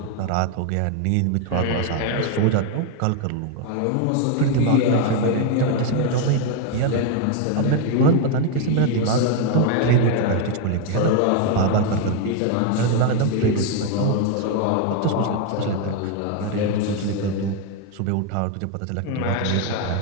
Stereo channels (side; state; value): both; different; correlation 0.01